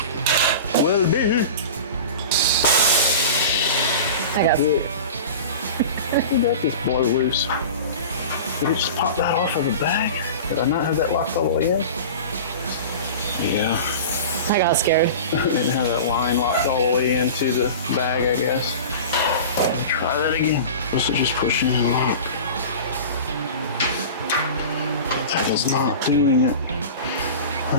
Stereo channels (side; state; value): both; inverted; correlation -0.34